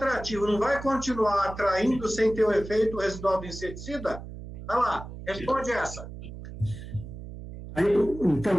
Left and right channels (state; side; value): noise; right; hum, 12 dB below the sound